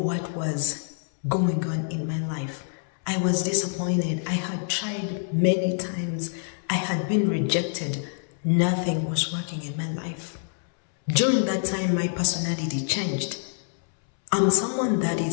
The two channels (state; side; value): silent; right; 61 dB below the other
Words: was going on in my life. I was disappointed. I had tried many times. I had been rejected. Nothing was working in my life. During that time, my personality changed. I'm someone that